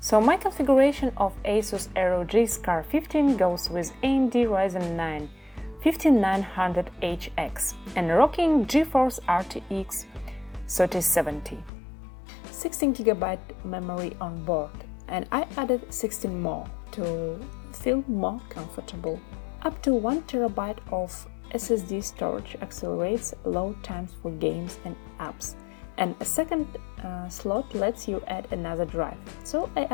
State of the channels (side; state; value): right; drops out; at 11.7 s